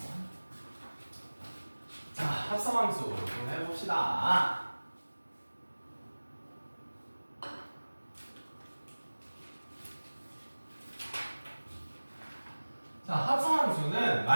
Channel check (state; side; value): inverted; both; correlation -1.00